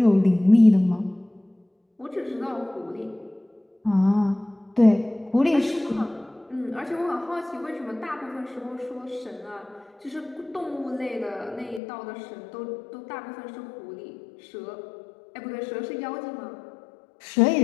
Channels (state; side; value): drops out; right; at 11.8 s